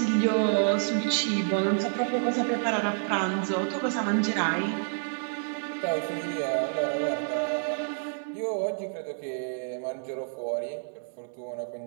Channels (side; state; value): left; silent; digital silence